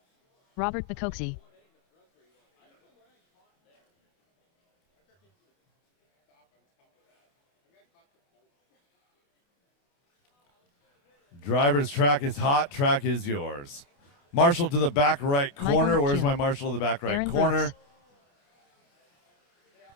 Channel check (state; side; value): late; right; 28 ms